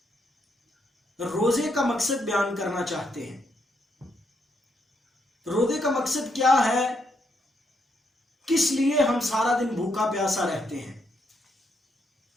روزے کا مقصد بیان کرنا چاہتے ہیں۔ روزے کا مقصد کیا ہے؟ کس لیے ہم سارا دن بھوکا پیاسا رہتے ہیں؟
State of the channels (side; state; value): both; normal; correlation 0.77